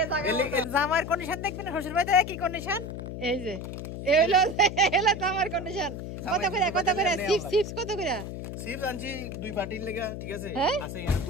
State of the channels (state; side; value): noise; left; hum, 7 dB below the sound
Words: জামাইয়ের কন্ডিশন দেখবেন শ্বশুর বাড়িতে কি কন্ডিশন এই যে জামাইয়ের কন্ডিশন কত করে চিপস কত করে চিপস আনছি দুই পার্টির লাগা ঠিক আছে আছে